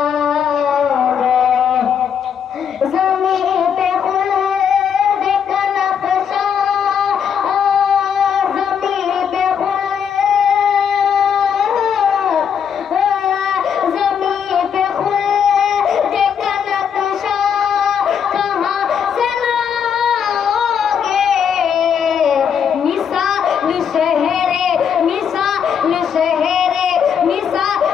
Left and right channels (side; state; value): right; quieter; 7.6 dB